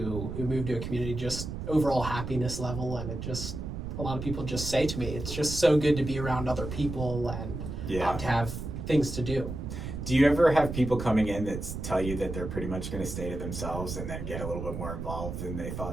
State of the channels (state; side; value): noise; right; rumble, 6 dB below the sound